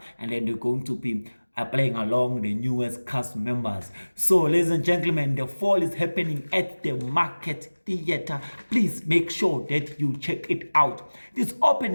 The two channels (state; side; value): inverted; both; correlation -1.00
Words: and then they're going to be playing along the newest cast members. So, ladies and gentlemen, The Fall is happening at the Market Theatre. Please make sure that you check it out. It's